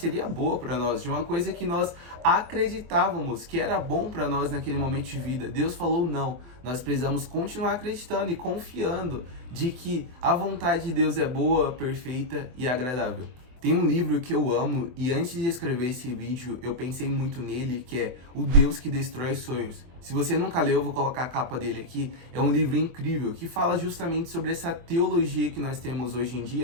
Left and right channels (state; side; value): late; left; 24 ms